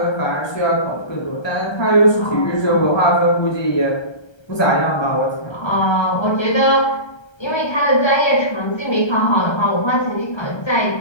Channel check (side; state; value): right; late; 1.3 ms